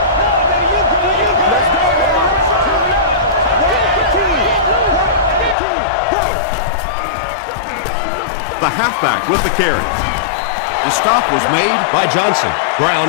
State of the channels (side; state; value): right; drops out; at 5.6 s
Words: The halfback with the carry. The stop was made by Johnson.